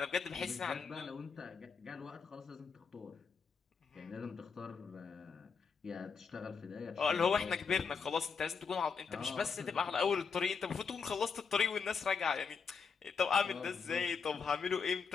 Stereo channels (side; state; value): right; quieter; 5.7 dB